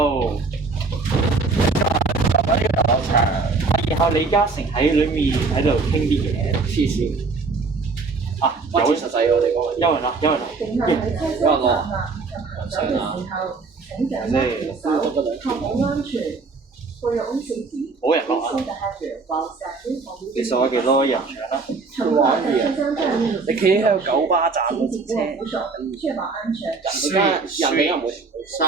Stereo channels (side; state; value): left; quieter; 4.2 dB